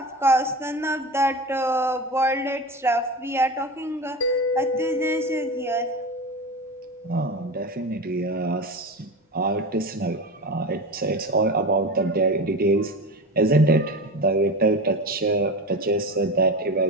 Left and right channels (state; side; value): normal; both; correlation 0.26